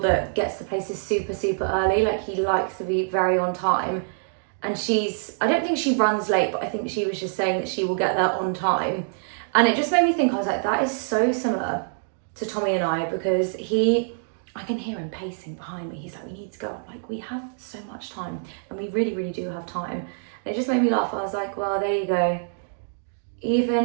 gets to places super early. Like, he likes to be very on time. And I don't think she runs late, but I think she was just saying that she will get there on time. And it just made me think, I was like, that is so similar to Tommy and I, because I can hear him pacing behind me. He's like, we need to go. I'm like, we have so much time, and we really do have time. And it just made me laugh. I was like, well, there you go.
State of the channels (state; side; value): silent; left; digital silence